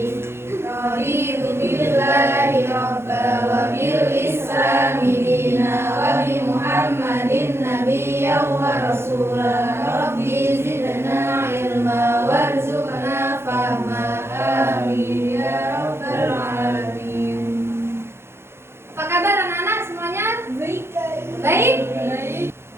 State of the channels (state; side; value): late; left; 0.12 ms